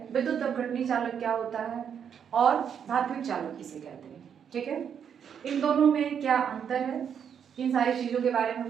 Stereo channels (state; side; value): quieter; left; 7.9 dB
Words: विद्युत अपघटनी चालक क्या होता है और धात्विक चालक किसे कहते हैं। ठीक है, इन दोनों में क्या अंतर है, इन सारी चीजों के बारे में हम